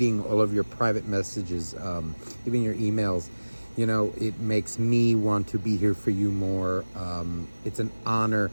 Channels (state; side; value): inverted; both; correlation -1.00